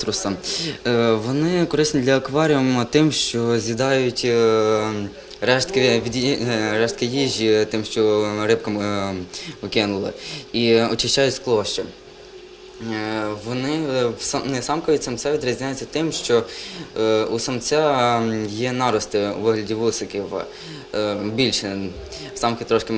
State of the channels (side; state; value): both; identical; correlation 1.00